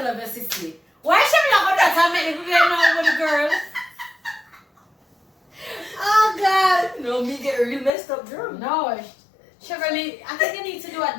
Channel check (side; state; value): right; drops out; at 7.9 s